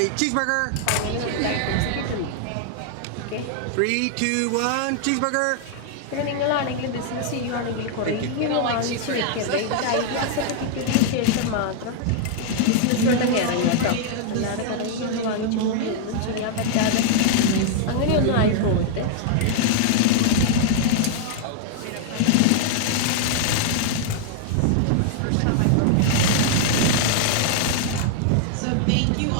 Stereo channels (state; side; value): different; both; correlation 0.00